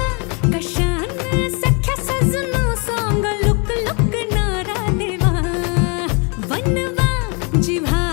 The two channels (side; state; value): right; quieter; 34.0 dB